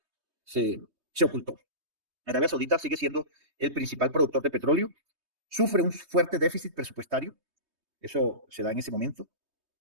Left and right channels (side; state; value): left; late; 3.2 ms